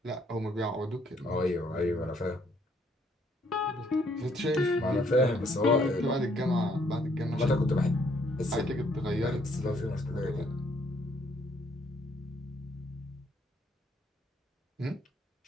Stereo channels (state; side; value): normal; both; correlation 0.67